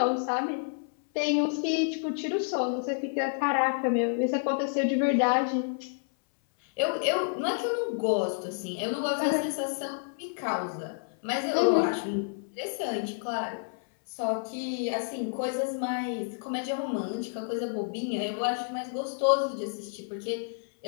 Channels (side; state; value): right; silent; 58 dB below the other